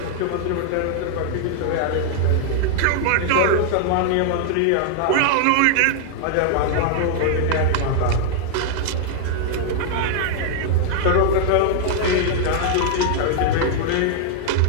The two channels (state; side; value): different; both; correlation 0.00